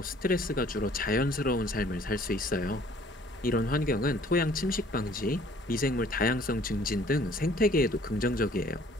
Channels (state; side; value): normal; both; correlation 0.56